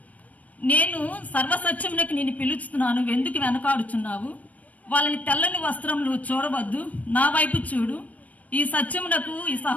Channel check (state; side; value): late; right; 0.071 ms